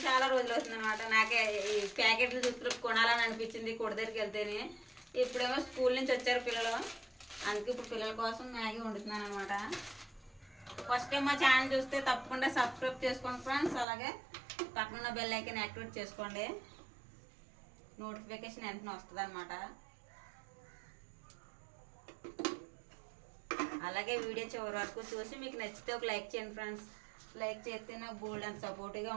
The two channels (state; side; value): drops out; left; at 13.9 s